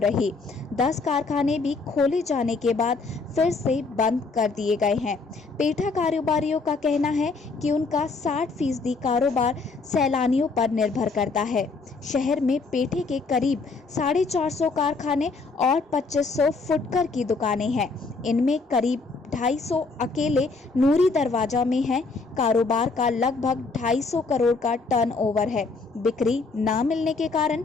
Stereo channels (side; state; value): right; quieter; 4.1 dB